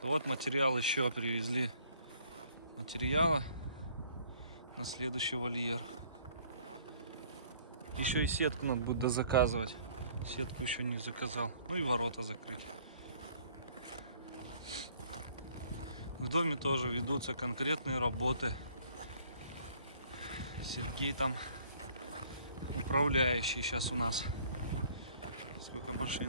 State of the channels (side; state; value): both; inverted; correlation -0.58